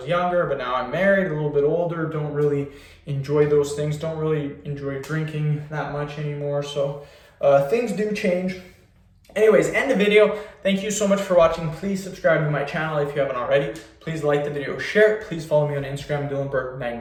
younger, but now I'm married, a little bit older. Don't really enjoy those things. Don't really enjoy drinking that much anymore. So things do change. Anyways, end the video. Thank you so much for watching. Please subscribe to my channel if you haven't already. Please like the video, share it. Please follow me on Instagram,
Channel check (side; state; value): both; identical; correlation 1.00